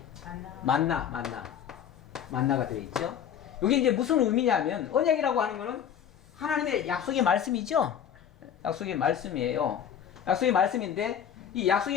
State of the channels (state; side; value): quieter; right; 8.9 dB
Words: 만나가 들어있죠. 이게 이제 무슨 의미냐면 언약이라고 하는 거는 하나님의 약속의 말씀이죠. 약속의 말씀이에요. 약속의 말씀인데 이